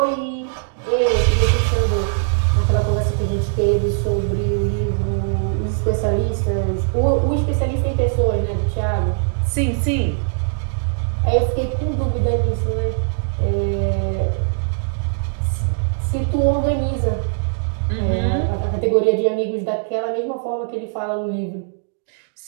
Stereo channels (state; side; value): silent; left; digital silence